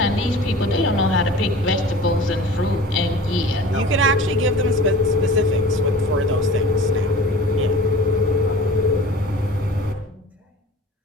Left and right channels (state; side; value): normal; both; correlation 0.41